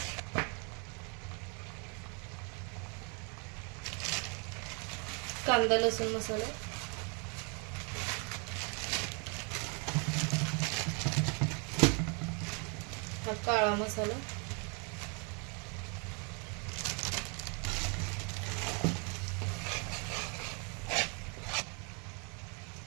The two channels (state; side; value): quieter; left; 35.3 dB